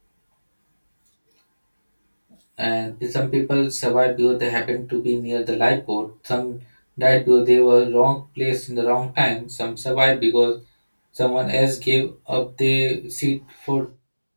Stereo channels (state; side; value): inverted; both; correlation -1.00